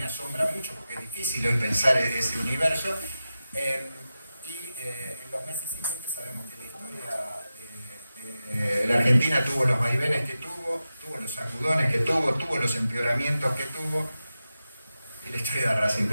asombra mucho porque es difícil hoy pensar ese universo. En los meses siguientes sabemos que la historia de la Argentina tuvo los vaivenes que tuvo los sacudones que tuvo los empeoramientos que tuvo, y la historia de Racing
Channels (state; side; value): inverted; both; correlation -0.92